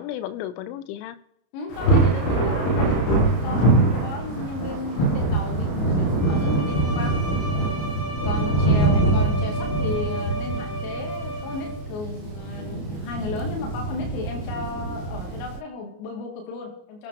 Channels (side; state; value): right; late; 33 ms